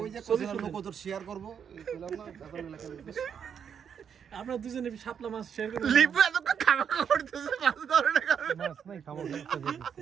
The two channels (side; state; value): left; quieter; 7.6 dB